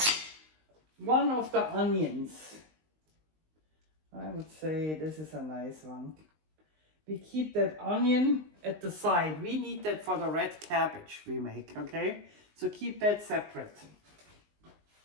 one of the onions. I would say this is a nice one. We keep that onion at the side. We need that for the red cabbage we make, okay? So keep that separate.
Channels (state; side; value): late; left; 19 ms